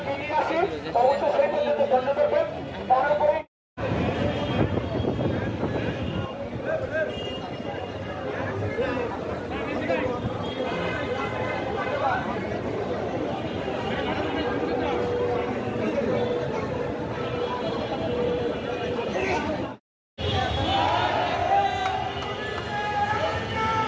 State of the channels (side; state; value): both; identical; correlation 1.00